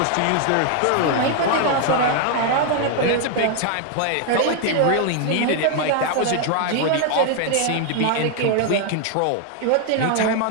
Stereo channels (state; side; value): different; both; correlation 0.00